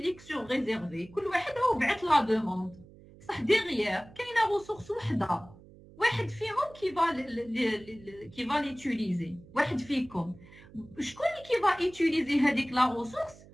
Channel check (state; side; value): noise; right; hum, 22 dB below the sound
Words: سور ريزيرفي. كل واحد هو بعث لا دوموند. صح ديغيير كاينه ريسورس وحده واحد فيهم كي فا ليتيليزي. واحد فيكم شكون اللي كي فا ايتيليزي هذيك لا ريسورس